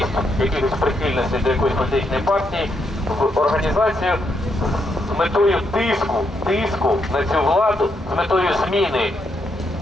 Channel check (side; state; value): both; normal; correlation 0.78